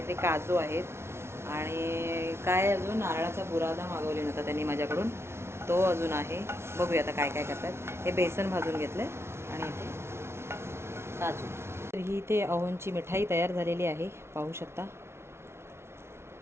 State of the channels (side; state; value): left; late; 0.12 ms